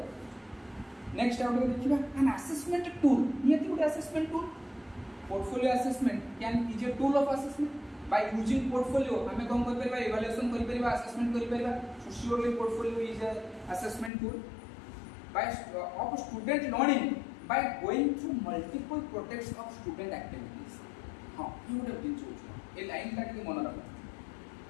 नेक्स्ट आउट देखिबा एन असेसमेंट टूल नियति गोटे assessment tool portfolio assessment can is a tool of assessment by using portfolio हमें कौन कर परिबा इवैल्यूएशन कर परिबा असेसमेंट कर परिबा so surely portfolio is a assessment tool by of student learning by going through multiple projects of student activities हां ये गोटे दिन सोच ए लाइन का के मन रख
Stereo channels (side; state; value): right; drops out; at 14.1 s